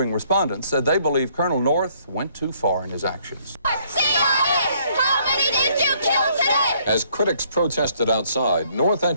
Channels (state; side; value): inverted; both; correlation -0.66